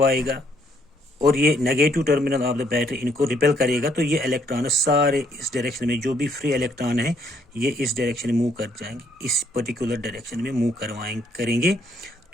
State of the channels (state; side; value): normal; both; correlation 0.68